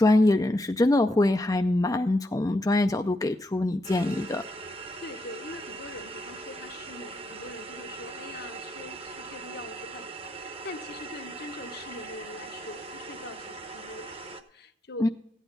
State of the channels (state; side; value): normal; both; correlation 0.80